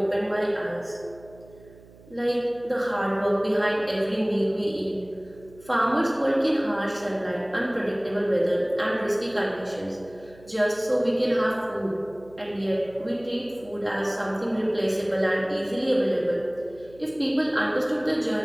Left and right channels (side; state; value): right; noise; hum, 23 dB below the sound